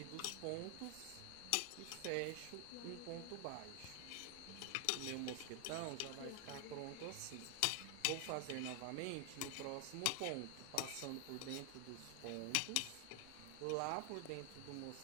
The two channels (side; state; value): both; different; correlation 0.00